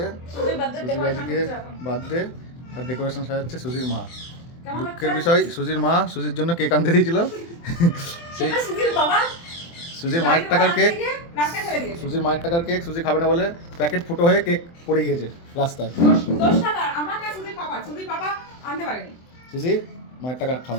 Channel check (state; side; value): late; right; 24 ms